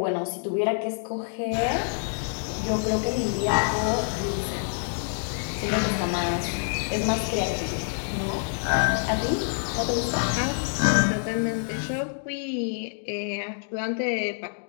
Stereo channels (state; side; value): silent; right; 60 dB below the other